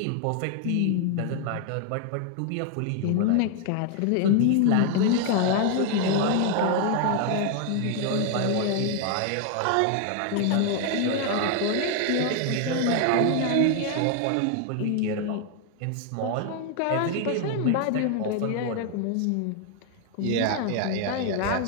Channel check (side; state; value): both; different; correlation 0.00